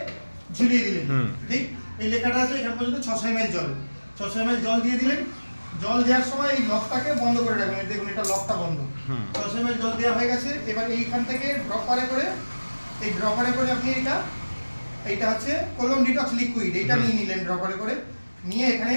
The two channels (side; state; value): both; inverted; correlation -1.00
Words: ঝুলিয়ে দিলেন, ঠিক এই লেখাটা আছে এখান পর্যন্ত 600 ml জল, 600 ml জল দিয়ে দিলেন। জল দেওয়ার সময় এই লকটাকে বন্ধ করে রাখবেন, দেখুন এটা লকটা বন্ধ। 600 ml জল দেওয়া হয়ে গেছে। এবার এইখান থেকে ড্রপারে করে আপনি এইটা হচ্ছে কোলন ডিটক্স লিকুইড, এইটা নিয়ে নিলেন ড্রপারে করে, নিয়ে এখানে